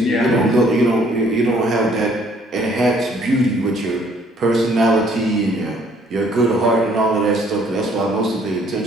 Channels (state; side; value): normal; both; correlation 0.61